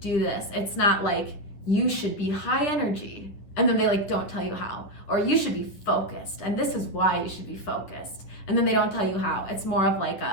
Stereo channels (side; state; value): right; late; 10 ms